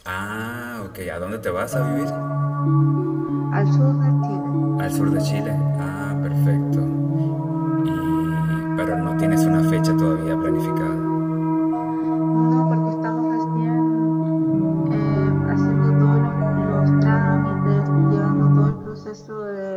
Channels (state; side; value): identical; both; correlation 1.00